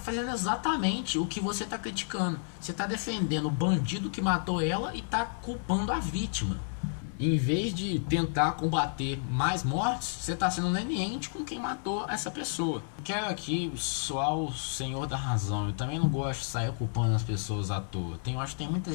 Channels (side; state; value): right; silent; 57 dB below the other